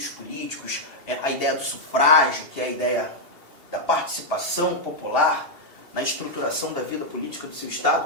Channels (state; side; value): late; left; 2.8 ms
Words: políticos, a ideia do sufrágio, que é a ideia da participação popular na estruturação da vida política do seu